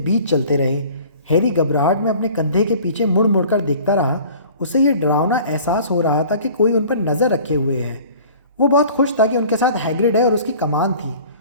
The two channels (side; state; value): both; inverted; correlation -0.47